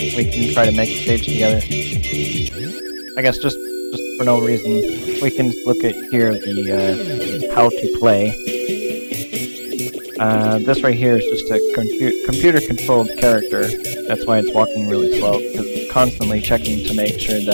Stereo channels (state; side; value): inverted; both; correlation -1.00